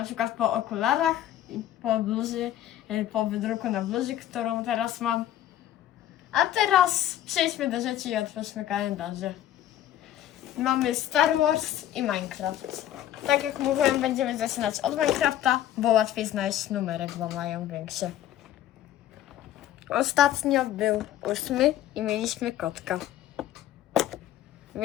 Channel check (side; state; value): right; quieter; 12.1 dB